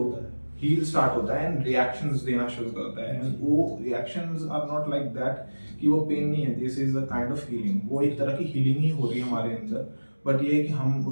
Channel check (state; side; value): inverted; both; correlation -1.00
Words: है। हील स्टार्ट होता है एंड रिएक्शंस देना शुरू करता है। एंड वो reactions are not like that कि वो पेन नहीं है, this is a kind of healing. वो एक तरह की हीलिंग ही हो रही है हमारे अंदर, बट ये है कि हम